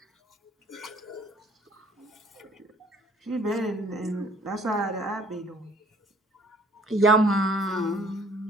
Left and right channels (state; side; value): normal; both; correlation 0.58